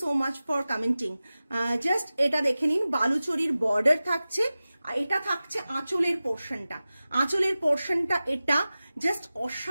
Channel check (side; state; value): both; inverted; correlation -0.96